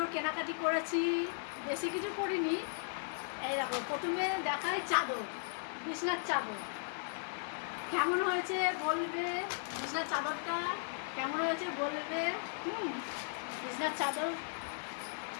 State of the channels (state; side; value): silent; right; digital silence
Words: কেনাকাটি করেছি, বেশি কিছু করিনি। এই দেখো প্রথমে দেখাই চাদর, বিছনার চাদর কেমন হয়েছে বলবে। বিছনার চাদরটা কেমন হয়েছে বলবে। বিছনার চাদর